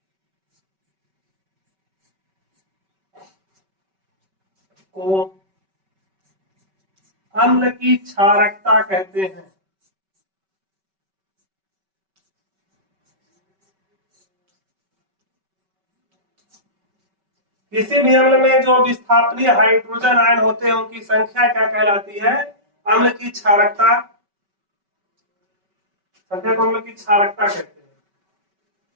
को अम्ल की क्षारकता कहते हैं। किसी भी अम्ल में जो विस्थापनीय हाइड्रोजन आयन होते हैं उनकी संख्या क्या कहलाती है? अम्ल की क्षारकता। संख्या को अम्ल की क्षारकता कहते हैं।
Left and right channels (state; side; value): late; left; 5.2 ms